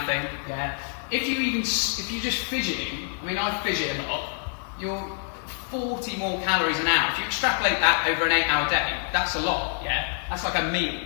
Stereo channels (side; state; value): right; silent; 61 dB below the other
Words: Yeah. If you're just fidgeting, I mean, I fidget a lot. You're 40 more calories an hour. If you extrapolate that over an 8-hour day, that's a lot. Yeah. That's like a meal.